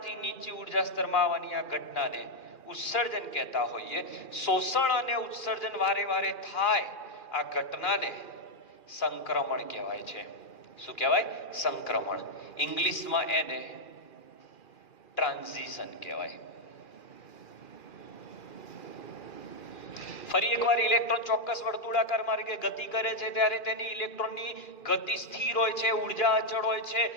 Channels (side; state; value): right; late; 2.4 ms